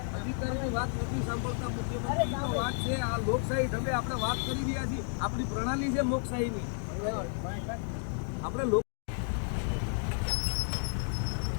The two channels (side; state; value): right; silent; 56 dB below the other